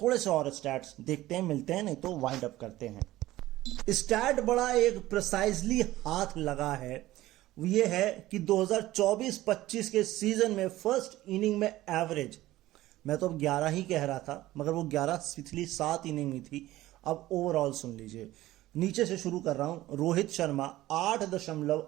से और स्टैट्स देखते हैं, मिलते हैं, नहीं तो वाइंड अप करते हैं। स्टैट बड़ा एक प्रिसाइजली हाथ लगा है, ये है कि 2024-25 के सीजन में फर्स्ट इनिंग में एवरेज, मैं तो अब 11 ही कह रहा था, मगर वो 11 पिछली 7 इनिंग में थी। अब ओवरऑल सुन लीजिए, नीचे से शुरू कर रहा हूं। रोहित शर्मा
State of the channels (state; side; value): quieter; left; 16.2 dB